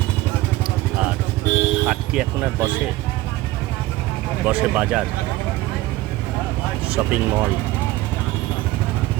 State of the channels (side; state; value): left; quieter; 17.6 dB